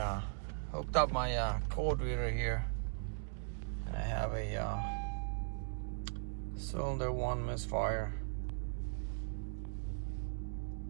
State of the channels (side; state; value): left; silent; digital silence